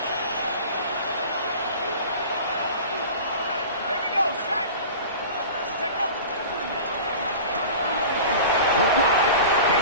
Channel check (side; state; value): both; inverted; correlation -0.37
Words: Here we go, set. Check up. Look wide.